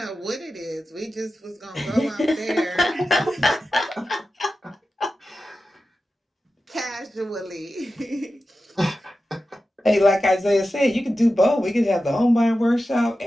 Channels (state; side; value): normal; both; correlation 0.93